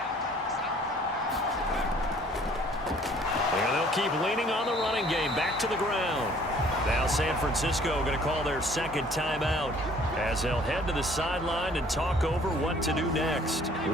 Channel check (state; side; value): normal; both; correlation 0.56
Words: And they'll keep leaning on the running game back to the ground. Now San Francisco going to call their second timeout as they'll head to the sideline and talk over what to do next.